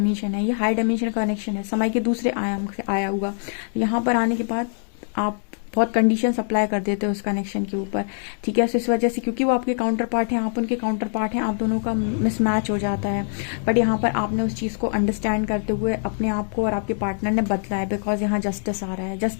है, ये हाई डायमेंशन का कनेक्शन है, समय के दूसरे आयाम से आया हुआ। यहाँ पर आने के बाद आप बहुत कंडीशन अप्लाई कर देते हो उस कनेक्शन के ऊपर, ठीक है। सो इस वजह से, क्योंकि वो आपके काउंटर पार्ट हैं, आप उनके काउंटर पार्ट हैं, आप दोनों का मिसमैच हो जाता है। बट यहाँ पर आपने उस चीज़ को अंडरस्टैंड करते हुए अपने आप को और आपके पार्टनर ने बदला है, बिकॉज यहाँ जस्टिस आ रहा है,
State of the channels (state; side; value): silent; right; digital silence